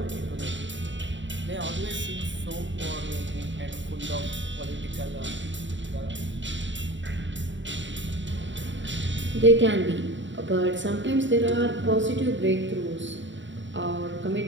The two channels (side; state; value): left; late; 0.54 ms